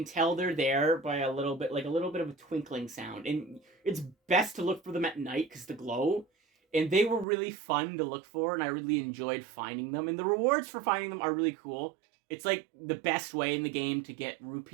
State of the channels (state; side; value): drops out; left; at 7.2 s